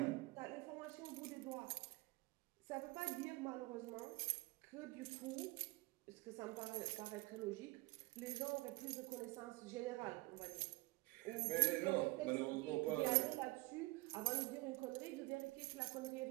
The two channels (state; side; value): quieter; left; 22.5 dB